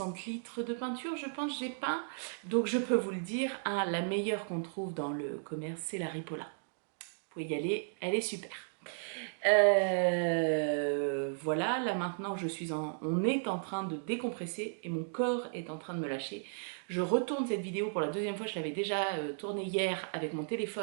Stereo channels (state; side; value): silent; left; digital silence